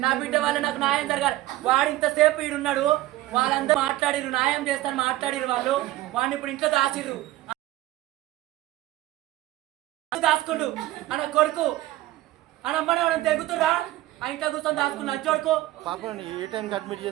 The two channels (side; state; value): left; quieter; 16.4 dB